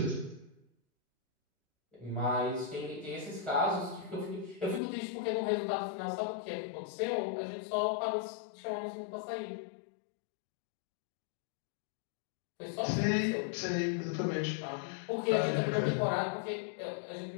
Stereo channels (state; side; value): drops out; right; at 4.8 s